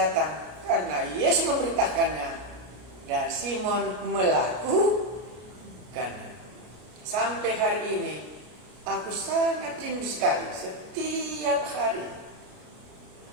karena Yesus memerintahkannya dan Simon melakukannya. Sampai hari ini aku sangat rindu sekali setiap hari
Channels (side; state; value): left; late; 33 ms